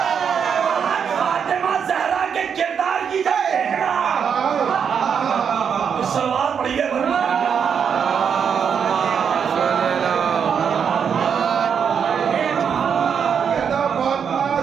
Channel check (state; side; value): quieter; left; 7.2 dB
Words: فاطمہ زہرا کے کردار کی جنگ دیکھنا۔ سلوات پڑھیے ورنہ